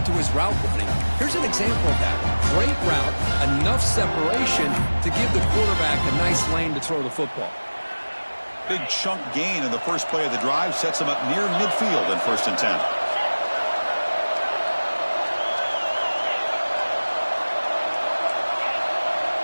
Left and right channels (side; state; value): both; inverted; correlation -1.00